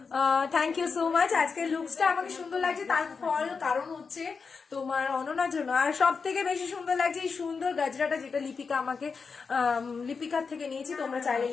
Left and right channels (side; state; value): right; quieter; 5.2 dB